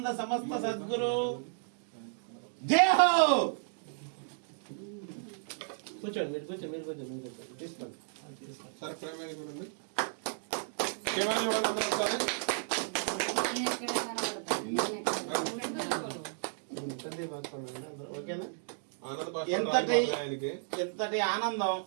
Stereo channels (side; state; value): left; silent; digital silence